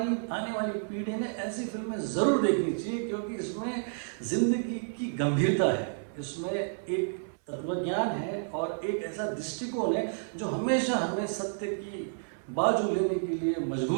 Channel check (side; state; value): left; silent; 57 dB below the other